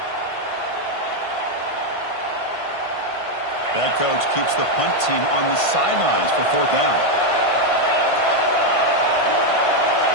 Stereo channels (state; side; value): late; right; 1.5 ms